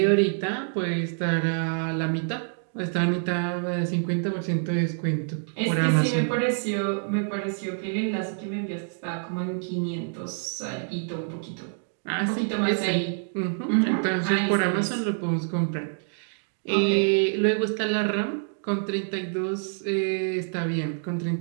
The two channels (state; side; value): silent; left; digital silence